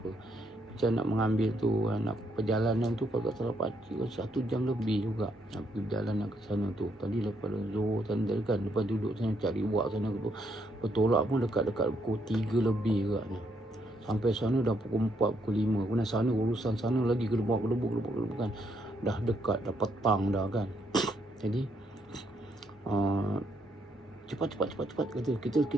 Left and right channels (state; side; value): normal; both; correlation 0.74